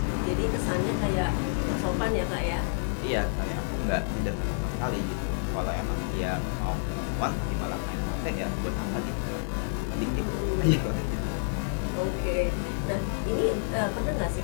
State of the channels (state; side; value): silent; right; 59 dB below the other